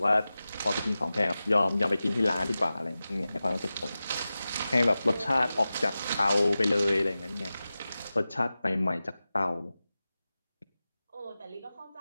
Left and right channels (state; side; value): inverted; both; correlation -0.95